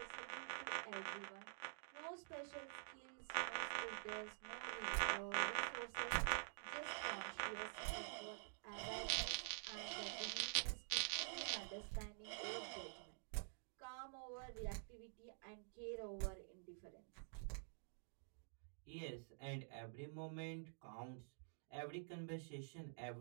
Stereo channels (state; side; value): silent; left; digital silence